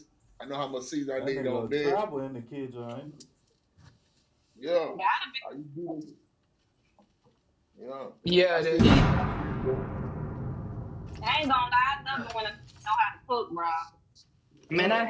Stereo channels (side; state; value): both; identical; correlation 1.00